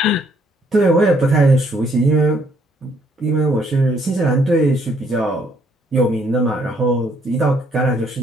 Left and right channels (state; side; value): normal; both; correlation 0.67